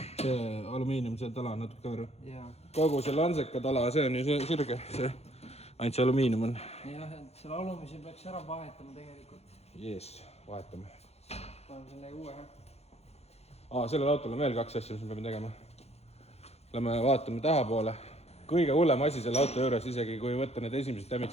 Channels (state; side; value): late; right; 0.31 ms